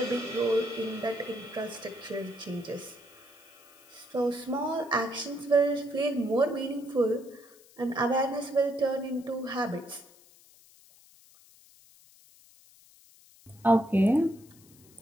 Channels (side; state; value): left; noise; hiss, 26 dB below the sound